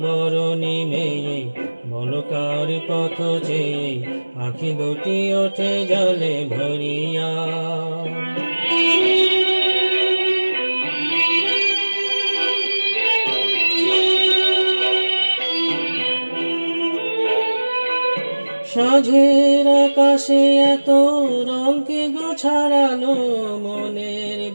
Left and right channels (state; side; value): inverted; both; correlation -1.00